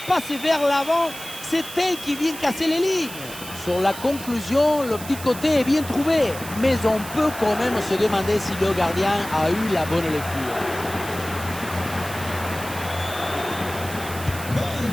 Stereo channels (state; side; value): noise; right; hiss, 12 dB below the sound